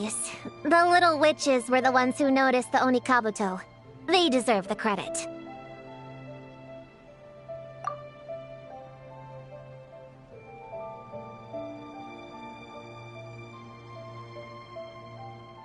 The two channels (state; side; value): identical; both; correlation 1.00